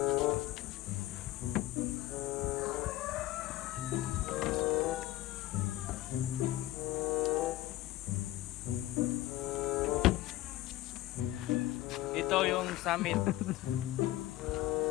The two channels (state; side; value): quieter; right; 16.0 dB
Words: Ito yung summit.